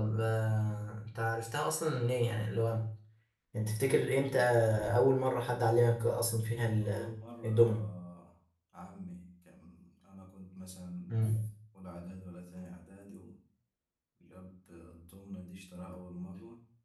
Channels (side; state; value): both; identical; correlation 1.00